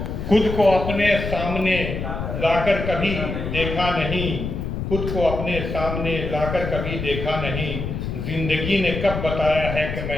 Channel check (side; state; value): left; noise; rumble, 4 dB below the sound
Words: खुद को अपने सामने लाकर कभी देखा नहीं, खुद को अपने सामने लाकर कभी देखा नहीं। जिंदगी ने कब बताया है कि